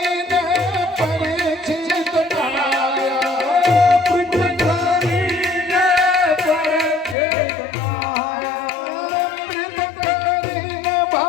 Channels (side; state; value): right; drops out; at 7.2 s